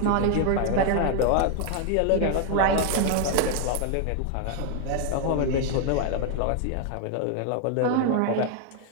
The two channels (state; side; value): different; both; correlation 0.00